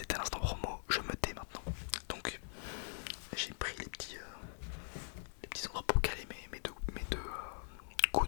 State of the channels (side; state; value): right; silent; digital silence